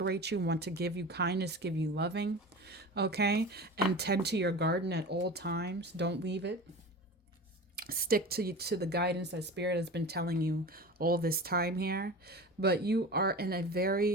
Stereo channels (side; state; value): both; normal; correlation 0.33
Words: you, want to give you kindness, give you loving. Okay, and tend to your garden at all times. Don't leave it. Stick to the guidance that Spirit has been telling you all this time here. But you are in a